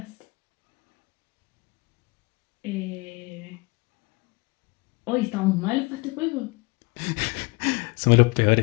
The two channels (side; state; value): right; quieter; 25.9 dB